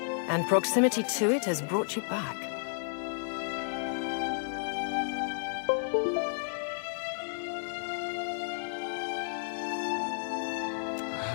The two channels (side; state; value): right; silent; digital silence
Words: and proximity to it has brought you back.